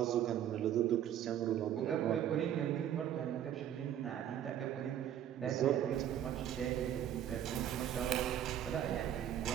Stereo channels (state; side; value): quieter; left; 10.5 dB